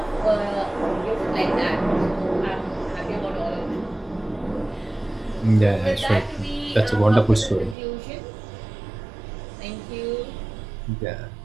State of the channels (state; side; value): drops out; left; at 7.8 s